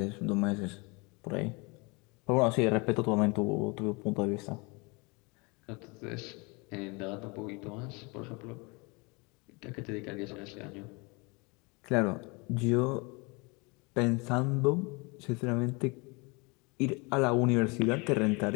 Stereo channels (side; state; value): right; quieter; 28.5 dB